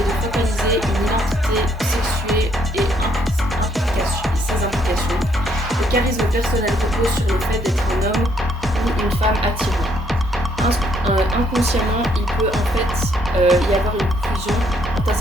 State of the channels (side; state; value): both; normal; correlation 0.70